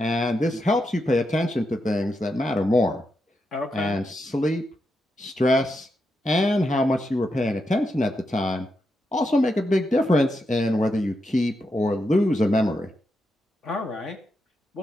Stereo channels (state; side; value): normal; both; correlation 0.85